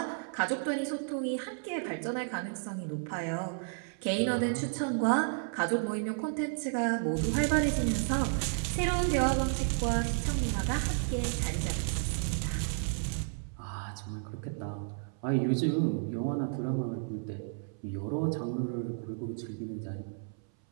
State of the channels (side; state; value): left; silent; 56 dB below the other